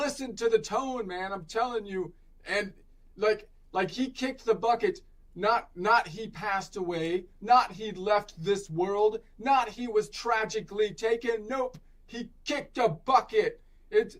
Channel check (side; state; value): both; identical; correlation 1.00